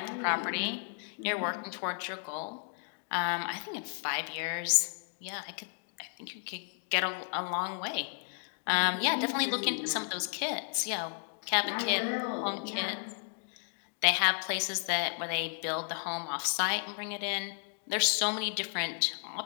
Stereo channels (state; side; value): silent; right; 56 dB below the other